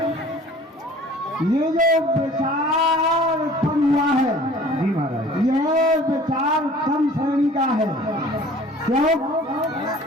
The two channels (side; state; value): both; normal; correlation 0.48